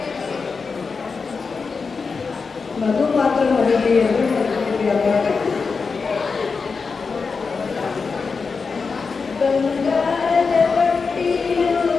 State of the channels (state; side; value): quieter; right; 4.9 dB